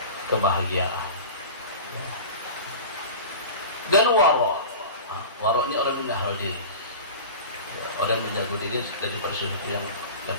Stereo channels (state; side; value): inverted; both; correlation -0.34